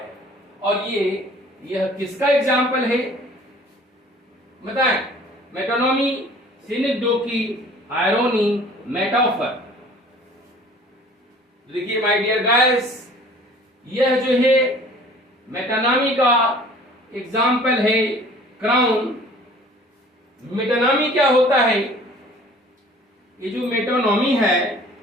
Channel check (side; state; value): both; normal; correlation 0.50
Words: और यह किसका एग्जाम्पल है बताएं? मेटोनॉमी, सिनेक्डोकी, आयरोनी, मेटाफर। देखिए माय डियर गाइस, यह जो है मेटानॉमी का एग्जाम्पल है क्राउन। मेटानॉमी क्या होता है? ये जो मेटोनॉमी है